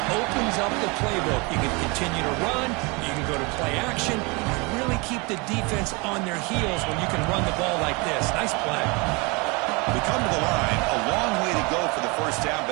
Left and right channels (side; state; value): left; quieter; 28.2 dB